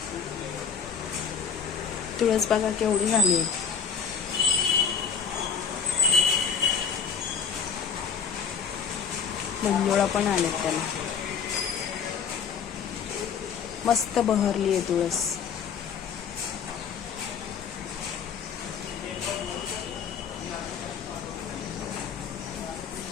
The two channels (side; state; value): right; quieter; 6.8 dB